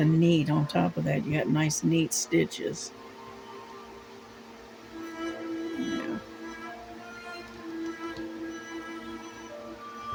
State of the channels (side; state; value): both; identical; correlation 1.00